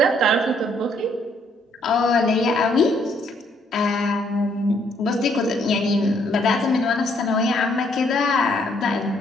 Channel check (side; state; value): both; normal; correlation 0.69